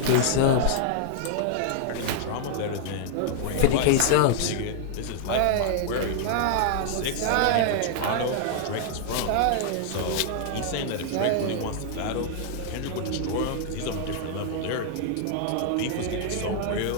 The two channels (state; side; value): different; both; correlation -0.01